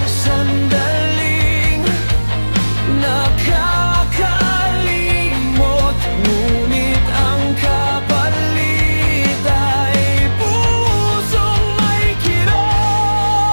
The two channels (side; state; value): both; inverted; correlation -1.00